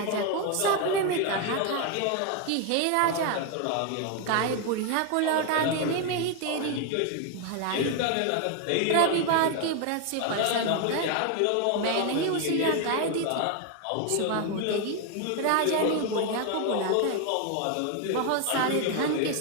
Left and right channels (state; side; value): different; both; correlation 0.01